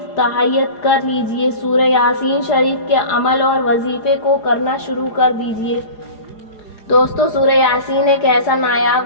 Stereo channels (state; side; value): late; right; 4.8 ms